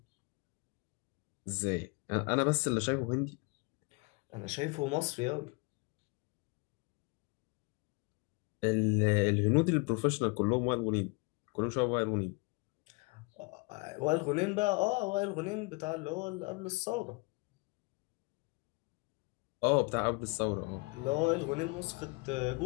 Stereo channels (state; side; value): quieter; right; 29.4 dB